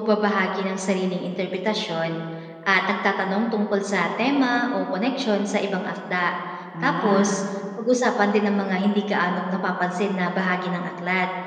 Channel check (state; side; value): identical; both; correlation 1.00